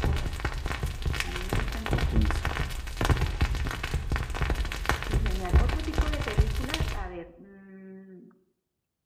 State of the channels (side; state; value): both; identical; correlation 1.00